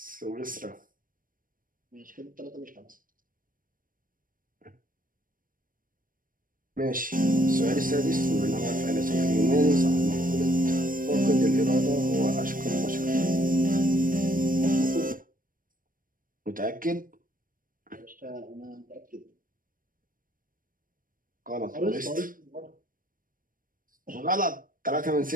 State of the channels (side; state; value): left; late; 0.40 ms